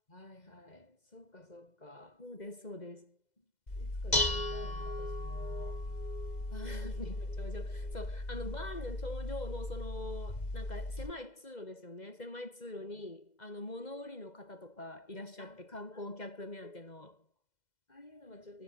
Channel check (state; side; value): late; right; 2.0 ms